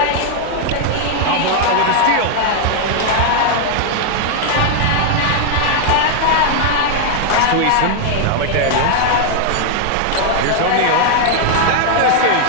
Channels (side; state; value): both; different; correlation 0.00